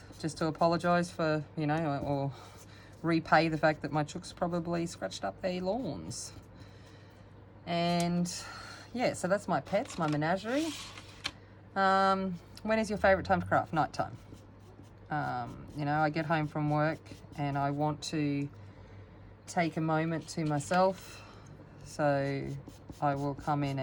just to apologise for, you know, or repay the fact that my chooks probably scratched up their lawns. And yeah, so that's my pets, my menagerie. When is your favourite time to craft? Night time. You know, I get home from work and I want to take a moment to myself, so I will come in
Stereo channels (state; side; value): identical; both; correlation 1.00